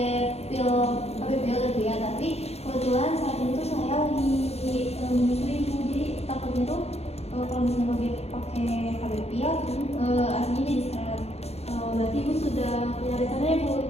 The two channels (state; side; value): late; right; 0.30 ms